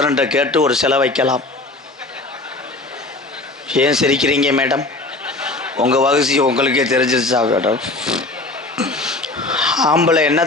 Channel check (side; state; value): right; quieter; 3.0 dB